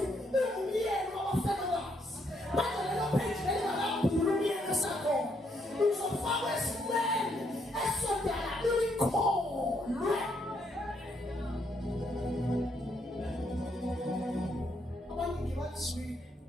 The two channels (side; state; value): both; normal; correlation 0.74